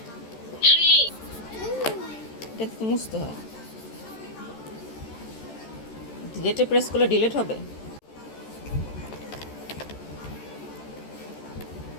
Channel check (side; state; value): right; late; 13 ms